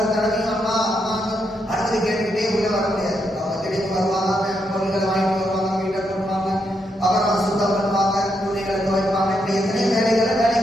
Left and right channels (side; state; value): both; normal; correlation 0.80